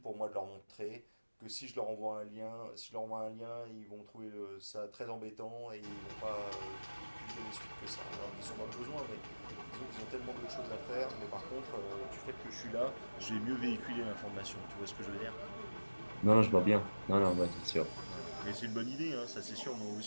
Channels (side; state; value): both; inverted; correlation -1.00